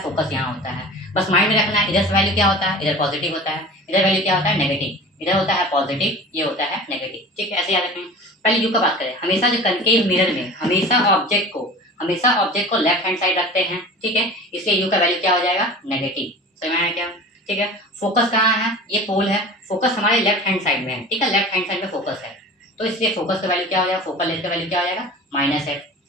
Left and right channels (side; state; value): both; normal; correlation 0.38